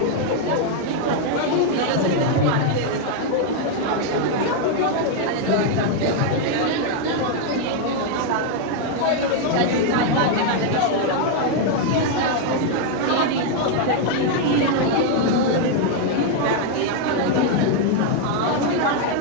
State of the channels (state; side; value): different; both; correlation 0.00